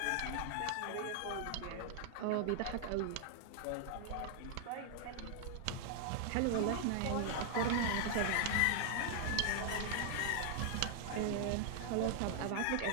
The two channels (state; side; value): different; both; correlation 0.00